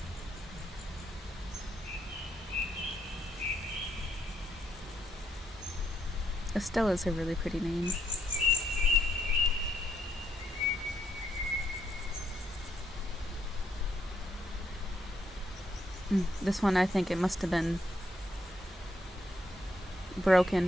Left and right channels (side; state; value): both; normal; correlation 0.74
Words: Estella's a really pretty name. This one, I think it must have been